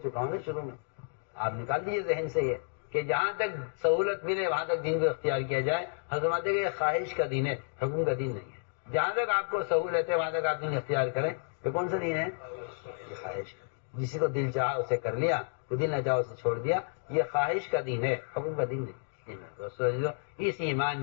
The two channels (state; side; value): silent; right; digital silence